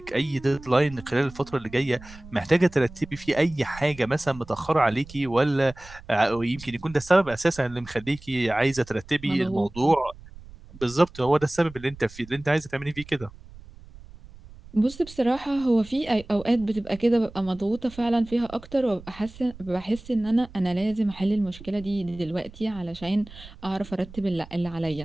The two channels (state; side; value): noise; right; rumble, 19 dB below the sound